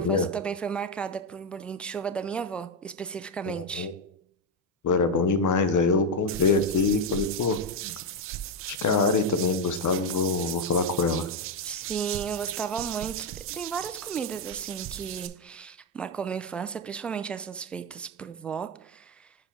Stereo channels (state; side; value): normal; both; correlation 0.05